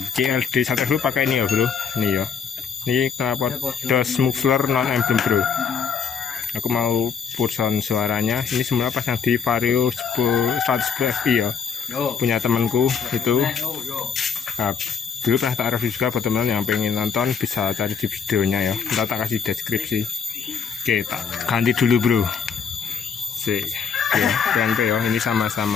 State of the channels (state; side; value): quieter; right; 6.4 dB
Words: CLD 110 pakai ini ya bro. Ini ya. Ini knalpot DOS muffler non emblem bro. Aku mau pulson suaranya. Ini semula pasang di Vario 110 FI ya. Punya temanku itu. Nah, dulu pernah tak review juga buat teman yang pengen nonton bisa cari di videonya ya. Ntar tak kasih deskripsi. Oke, tak ganti dulu bro. Sih. Ya, PNP ya, ini